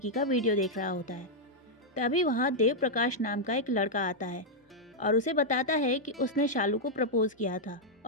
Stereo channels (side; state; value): both; normal; correlation -0.04